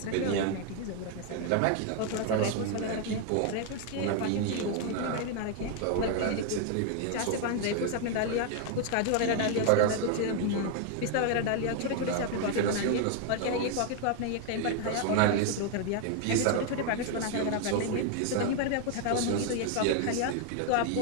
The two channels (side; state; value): both; different; correlation 0.00